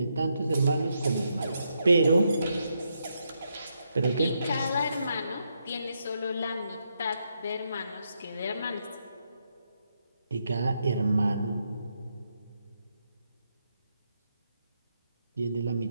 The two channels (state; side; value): inverted; both; correlation -0.80